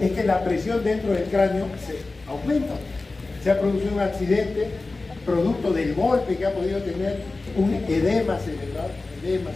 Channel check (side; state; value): right; quieter; 3.4 dB